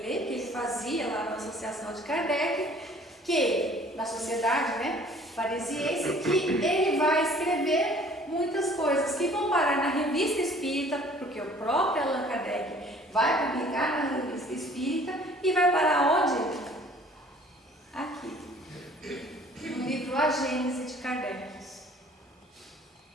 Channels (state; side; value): normal; both; correlation 0.53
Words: que ele fazia lá na Associação de Kardec, que na sociedade, né, parisiense, que ele vai escrever muitas coisas que vão parar na Revista Espírita, porque o próprio Allan Kardec vai publicar na Revista Espírita e vai parar onde? Aqui, no livro A Gênese de Kardec,